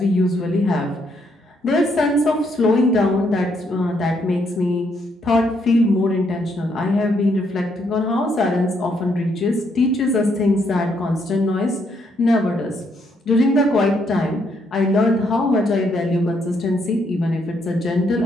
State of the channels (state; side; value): normal; both; correlation 0.74